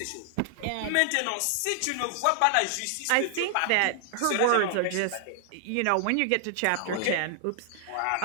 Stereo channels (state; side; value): different; both; correlation 0.00